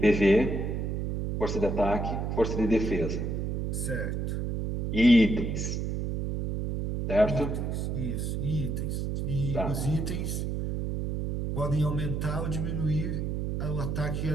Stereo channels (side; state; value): right; noise; hum, 1 dB below the sound